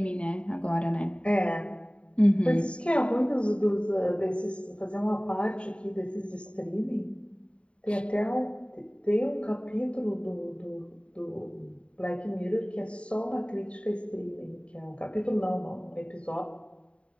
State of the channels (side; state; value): right; late; 0.060 ms